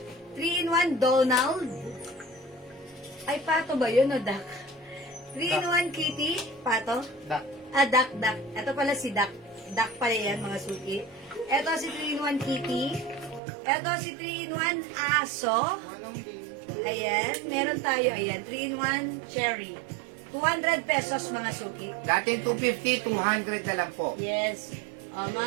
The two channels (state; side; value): drops out; left; at 13.4 s